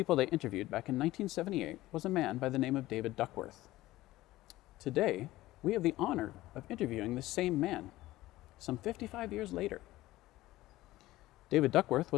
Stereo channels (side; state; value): right; quieter; 17.0 dB